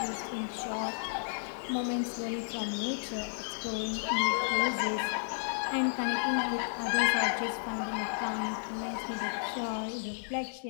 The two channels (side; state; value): right; silent; digital silence